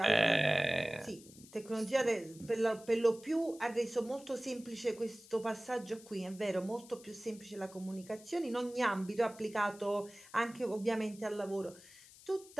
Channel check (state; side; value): noise; left; hiss, 21 dB below the sound